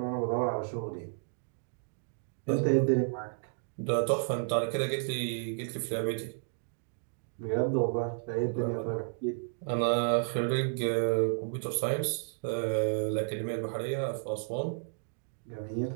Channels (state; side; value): silent; left; digital silence